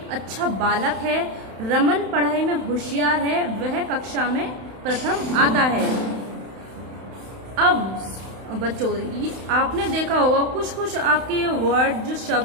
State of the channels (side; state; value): left; late; 31 ms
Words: अच्छा बालक है। रमन पढ़ाई में होशियार है, वह कक्षा में प्रथम आता है। अब बच्चों, आपने देखा होगा कुछ आपके वर्ड जो